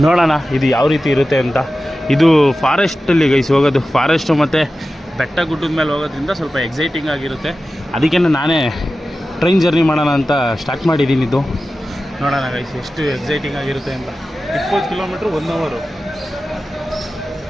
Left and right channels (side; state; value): both; normal; correlation 0.94